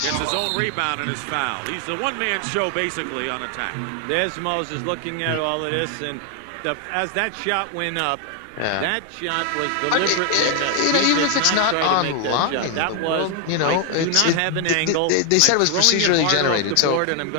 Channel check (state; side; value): different; both; correlation 0.00